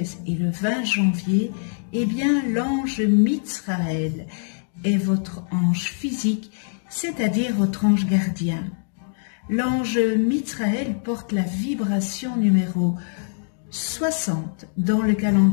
et le 20 janvier, l'ange Mitsraël est votre ange physique, c'est-à-dire votre ange gardien. L'ange Mitsraël porte la vibration numéro 60 dans le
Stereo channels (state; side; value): silent; right; digital silence